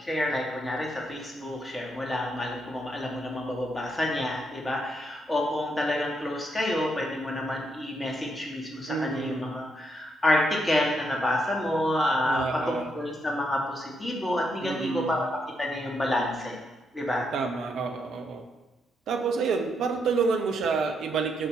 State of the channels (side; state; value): both; normal; correlation 0.78